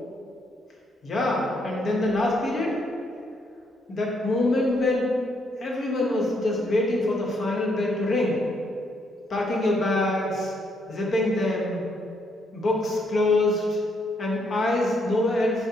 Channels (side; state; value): both; normal; correlation 0.73